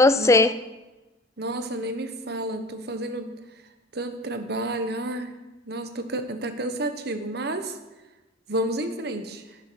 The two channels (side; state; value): both; normal; correlation 0.37